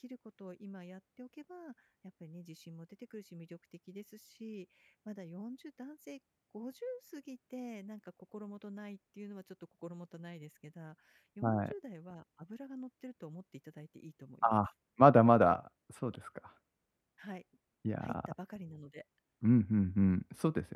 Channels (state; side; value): identical; both; correlation 1.00